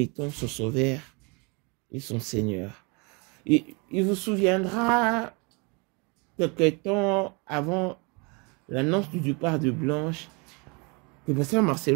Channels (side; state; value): left; quieter; 30.8 dB